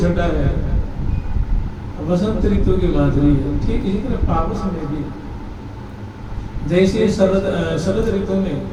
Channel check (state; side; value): identical; both; correlation 1.00